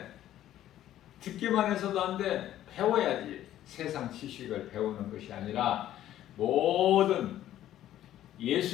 듣기만 해서도 안 돼. 배워야지. 세상 지식을 배우는 것이 아니라 모든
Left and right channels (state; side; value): quieter; right; 12.6 dB